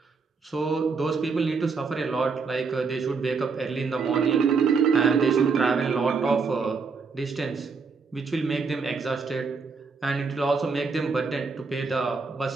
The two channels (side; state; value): left; quieter; 4.9 dB